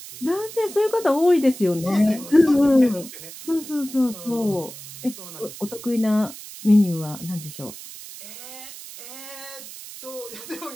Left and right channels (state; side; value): noise; right; hiss, 14 dB below the sound